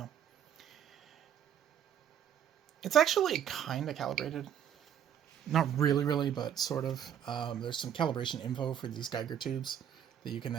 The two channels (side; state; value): left; quieter; 9.4 dB